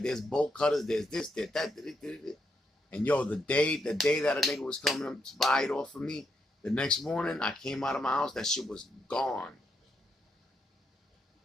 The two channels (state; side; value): normal; both; correlation 0.79